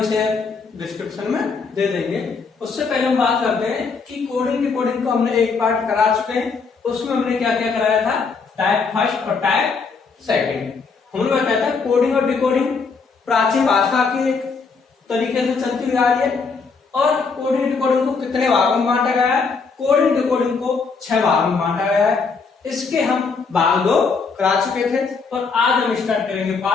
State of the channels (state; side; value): quieter; right; 4.9 dB